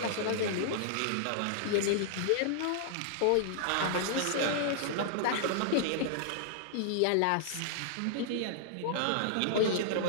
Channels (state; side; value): different; both; correlation -0.01